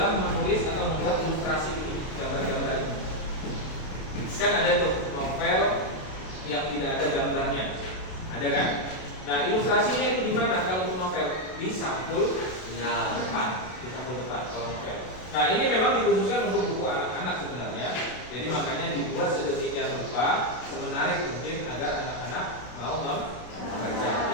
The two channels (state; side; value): late; right; 32 ms